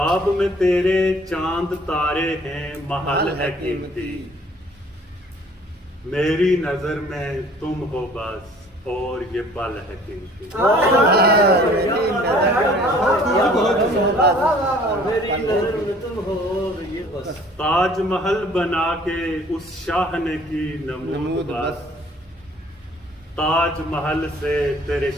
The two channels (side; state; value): both; normal; correlation 0.54